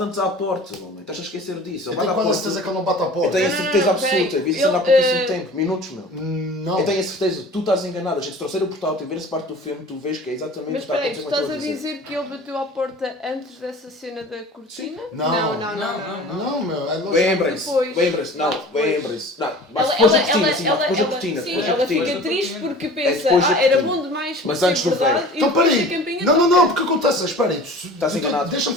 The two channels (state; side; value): normal; both; correlation 0.42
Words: à porta, homem. Estás a esquecer disso. Eu Ele bate tenho à quase a porta. certeza que ele não bate à Eu porta. tenho a Não, certeza não, absoluta, peraí. eu vi isso há Ele, pouquíssimo tempo, minutos, meu. Não. Eu tenho a certeza, tu estás enganado, a gente trouxer o portátil e ver essa parte do filme, tu vês que é exatamente Mas o que está a espera aí, tu acontecer com estás aquilo a que eu dizer que ele bateu à porta antes dessa cena da cortina? Não. Não. Não, meu. É lógico. Lembrem-se, Depois. lembrem-se, não, Depois. lembrem-se. Não, mas depois da cortina, sim, depois da cortina, sim, depois da ela fica cortina. triste porque É pensa, depois da era cortina. bom demais para Mas ser antes do verdade velho. e Então, depois a peraí. campainha Não, toca. porque acontece. Espera aí. Estás enganado. Deixa-me